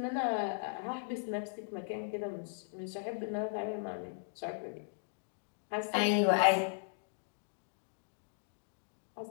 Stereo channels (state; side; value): silent; right; digital silence